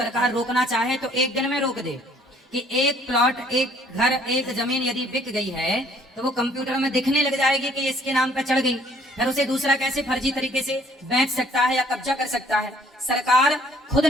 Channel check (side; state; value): both; normal; correlation 0.60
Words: रोकना चाहे तो एक दिन में रोक दे कि एक प्लॉट, एक घर, एक जमीन यदि बिक गई है तो वो कंप्यूटर में दिखने लग जाएगी कि इसके नाम पर चढ़ गई, फिर उसे दूसरा कैसे फर्जी तरीके से बेच सकता है या कब्जा कर सकता है। सरकार खुद